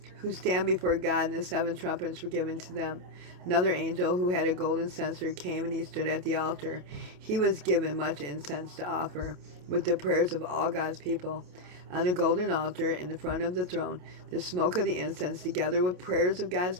who stand before God, and the seven trumpets were given to them. Another angel who had a golden censer came, and he stood at the altar. He was given much incense to offer, with the prayers of all God's people. On the golden altar in the front of the throne, the smoke of the incense, together with prayers of God's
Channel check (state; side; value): late; left; 28 ms